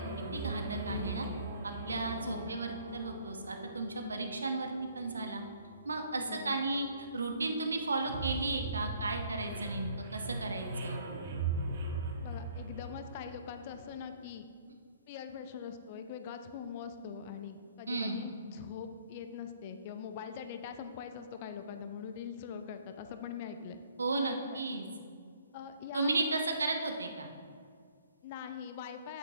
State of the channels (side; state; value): both; inverted; correlation -0.61